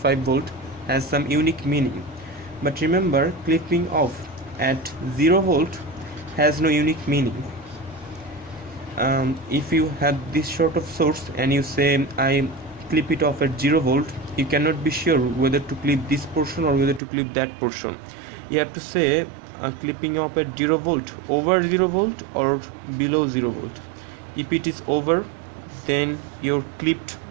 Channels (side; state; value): left; drops out; at 17.0 s